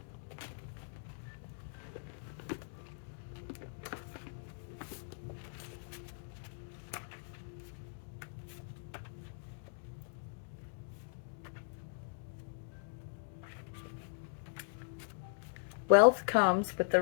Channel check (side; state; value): right; silent; digital silence